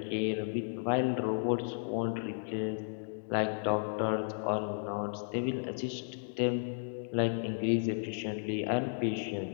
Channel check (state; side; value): silent; right; digital silence